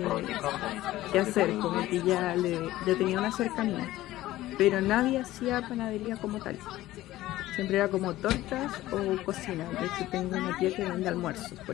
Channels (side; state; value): right; quieter; 15.8 dB